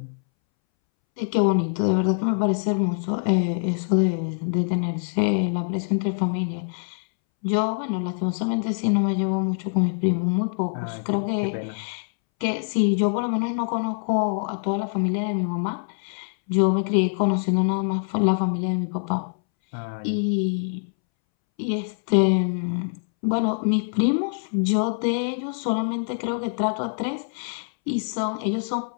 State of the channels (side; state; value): right; silent; 62 dB below the other